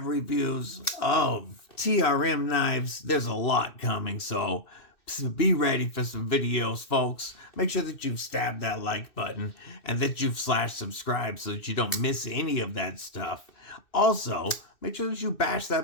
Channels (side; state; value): right; late; 2.6 ms